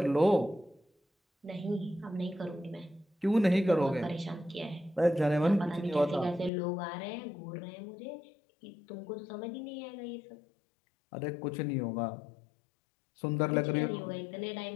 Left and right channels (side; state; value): right; drops out; at 6.5 s